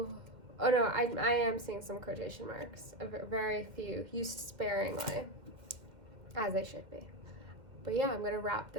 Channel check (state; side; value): late; left; 2.1 ms